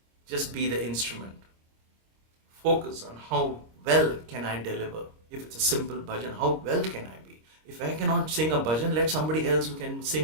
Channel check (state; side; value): late; left; 26 ms